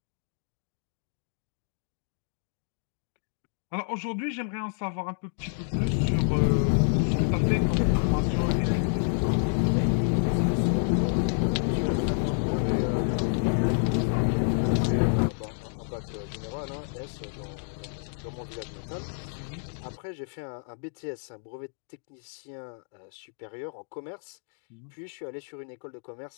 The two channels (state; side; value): silent; right; digital silence